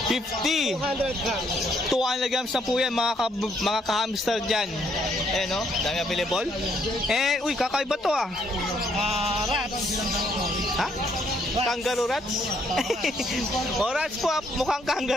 50. 200 grams. 200 grams na po yan, mga ka-hamster dyan. Ayan, no? Dami available. Eh, uy, kakaiba to, ah. Rats. Ha? Kangaroo rats? O, rats po, ah. Mukhang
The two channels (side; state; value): both; normal; correlation 0.70